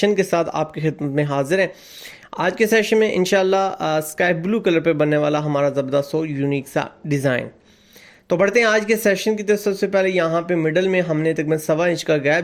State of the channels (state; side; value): identical; both; correlation 1.00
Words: के साथ आपकी खिदमत में हाजिर हैं। आज के सेशन में इंशाल्लाह स्काई ब्लू कलर पे बनने वाला हमारा ज़बरदस्त और यूनिक सा डिज़ाइन। तो बढ़ते हैं आज के सेशन की तरफ। सबसे पहले यहाँ पे मिडल में हमने तकरीबन 1.25 इंच का